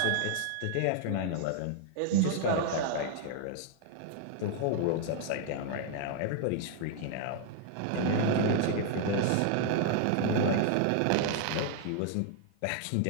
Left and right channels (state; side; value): different; both; correlation 0.00